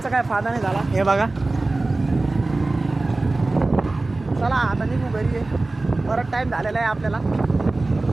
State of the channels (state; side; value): quieter; left; 3.1 dB